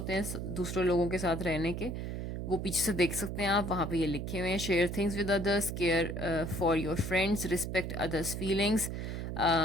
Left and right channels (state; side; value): noise; right; hum, 5 dB below the sound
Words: हैं दूसरे लोगों के साथ रहने के, वो पीछे से देख सकते हैं आप, वहाँ पे ये लिखे हुए हैं। Share things with others, care for your friends, respect others feelings,